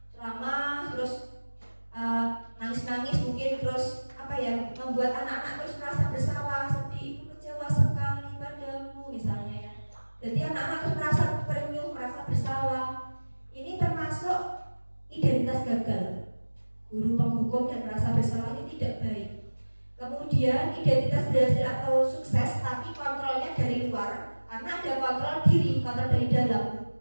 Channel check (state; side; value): inverted; both; correlation -1.00